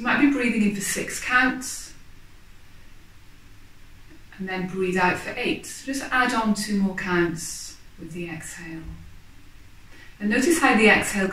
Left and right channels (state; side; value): identical; both; correlation 1.00